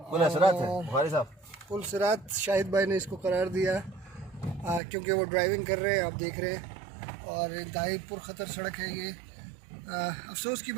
पुल सिरात शाहिद भाई ने इसको करार दिया क्योंकि वो ड्राइविंग कर रहे हैं, आप देख रहे हैं। और इंतहाई पुरखतर सड़क है ये। अफसोस की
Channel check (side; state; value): left; drops out; at 4.8 s